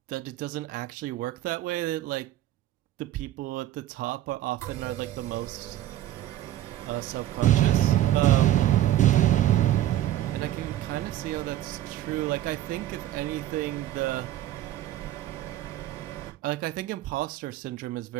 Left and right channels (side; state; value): left; quieter; 13.3 dB